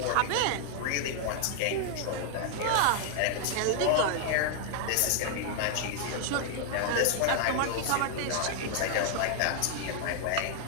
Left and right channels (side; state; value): both; different; correlation 0.00